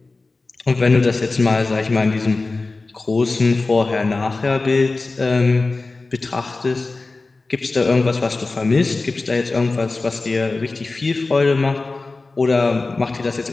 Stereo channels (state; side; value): quieter; right; 3.5 dB